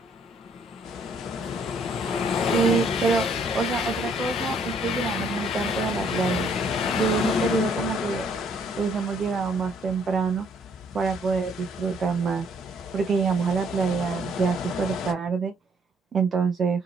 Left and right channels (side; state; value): both; normal; correlation 0.65